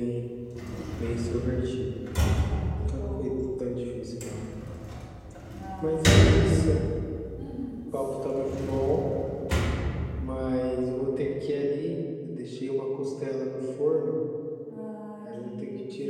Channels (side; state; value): both; identical; correlation 1.00